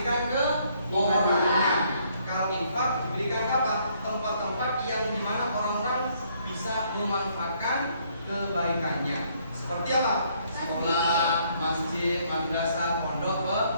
ke orangnya. Kalau infak diberikan ke apa? Tempat-tempat yang dimana orang-orang bisa memanfaatkan kebaikannya. Seperti apa? Sekolah, masjid, madrasah,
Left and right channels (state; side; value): inverted; both; correlation -0.68